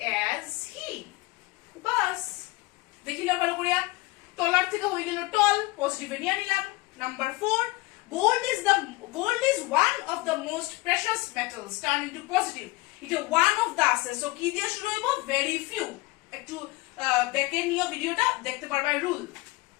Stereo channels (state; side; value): quieter; right; 22.4 dB